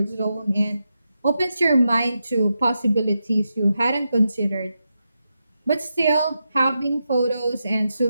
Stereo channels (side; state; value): both; inverted; correlation -0.87